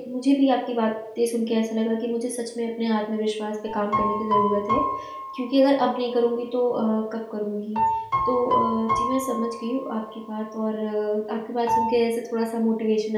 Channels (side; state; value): both; identical; correlation 1.00